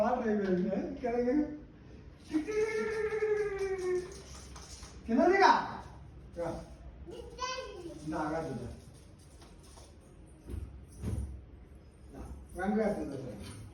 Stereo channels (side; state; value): both; identical; correlation 1.00